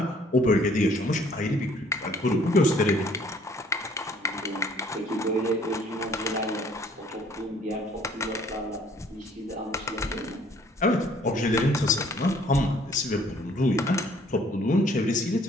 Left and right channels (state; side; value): normal; both; correlation 0.59